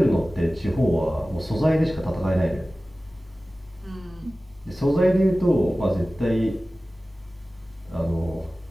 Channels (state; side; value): normal; both; correlation 0.97